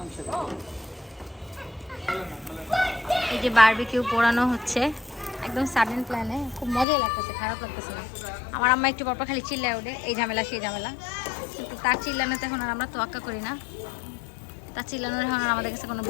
এই যে বারবিকিউ পোড়ানো হচ্ছে একদম সাডেন প্ল্যানে। খুব মজাই লাগতেছে, খারাপ লাগতেছে না। আমার আম্মা একটু পরপর খালি চিল্লায় ওঠে, এই ঝামেলা সেই ঝামেলা। কিন্তু তার চিল্লানোতে এখন আর আমরা তোয়াক্কা করি না। তার চিল্লানোর এখন আর আমাদের কাছে কোনো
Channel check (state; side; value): drops out; right; at 6.9 s